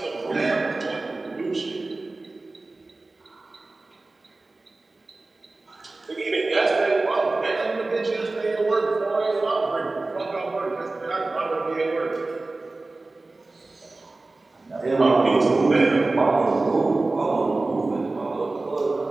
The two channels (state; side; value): quieter; left; 3.2 dB